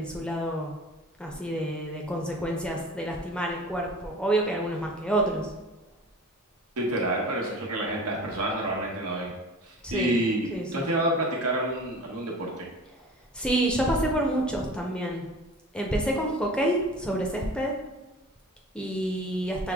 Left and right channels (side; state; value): both; normal; correlation 0.40